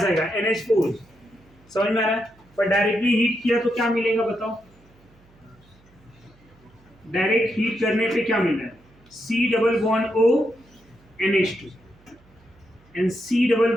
NH4, समझ में आ रहा है। पर डायरेक्टली हीट किया तो क्या मिलेगा बताओ, डायरेक्ट हीट करने पे क्या मिल रहा है C double bond O NH2 and C double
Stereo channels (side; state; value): right; noise; hum, 29 dB below the sound